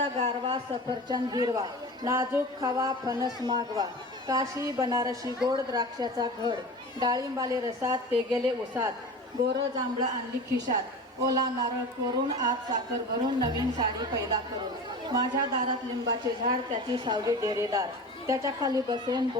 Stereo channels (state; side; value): normal; both; correlation 0.33